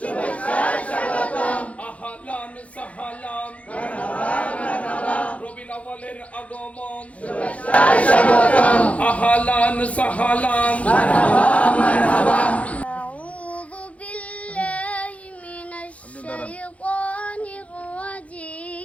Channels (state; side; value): late; right; 0.065 ms